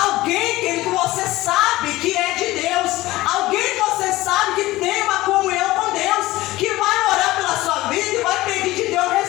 que você sabe que é de Deus, alguém que você sabe que tem uma comunhão com Deus, que vai orar pela sua vida e vai pedir de Deus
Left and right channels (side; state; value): right; quieter; 17.9 dB